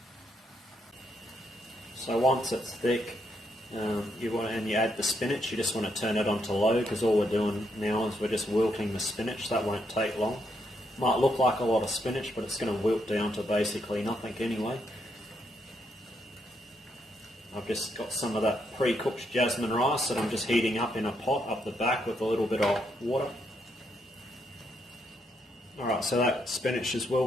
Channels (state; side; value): normal; both; correlation 0.77